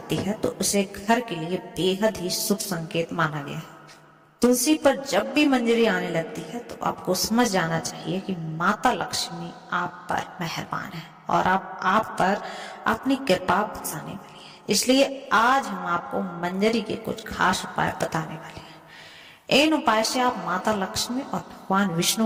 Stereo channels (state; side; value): identical; both; correlation 1.00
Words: है तो उसे घर के लिए बेहद ही शुभ संकेत माना गया है। तुलसी पर जब भी मंजरी आने लगती है तो आपको समझ जाना चाहिए कि माता लक्ष्मी आप पर मेहरबान है और आप पर अपनी कृपा बरसाने वाली है। इसलिए आज हम आपको मंजरी के कुछ खास उपाय बताने वाले हैं। इन उपाय से आप माता लक्ष्मी और भगवान